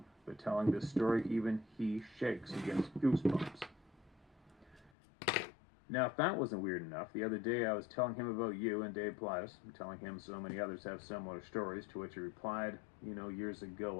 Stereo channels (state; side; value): drops out; right; at 4.9 s